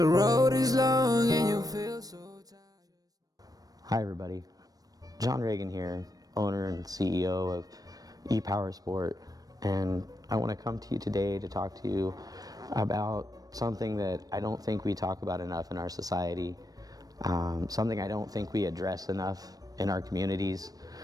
road is long and you feel so tired. Hi everybody, John Reagan here, owner and CEO of E-Powersport, and I want to come to you today to talk to you about something that I don't think we talk about enough in our society, something I don't think we address enough in our communities,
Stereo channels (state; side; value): late; left; 0.18 ms